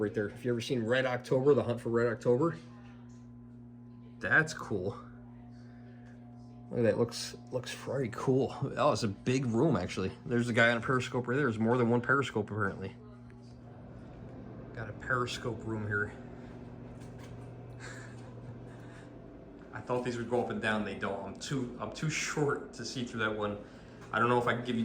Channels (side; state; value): both; identical; correlation 1.00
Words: there. If you ever seen Red October, The Hunt for Red October. That's cool. Look at that, looks very cool. Oh, it's a big room actually. There's a guy on a periscope right there. There's more than 1 periscope apparently. Got a periscope room here. I thought these would go up and down, they don't. I'm too short to see through that one. I don't know if I can give you